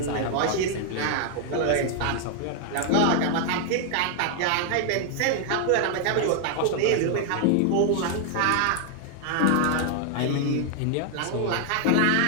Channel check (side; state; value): both; different; correlation 0.00